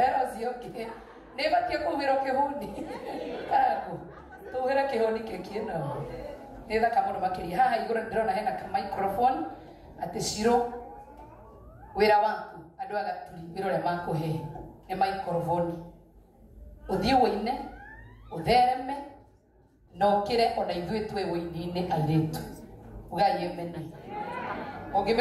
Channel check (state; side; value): identical; both; correlation 1.00